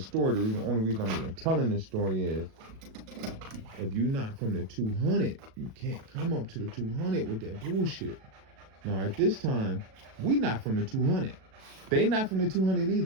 the only reason I'm even telling this story is, if you're not from the 200, you can't come up to the 200 with that bullshit. Now, at this time, we not from the 200. They not from the 200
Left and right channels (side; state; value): left; late; 37 ms